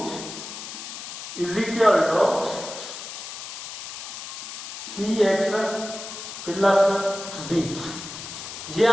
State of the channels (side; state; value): left; noise; hiss, 9 dB below the sound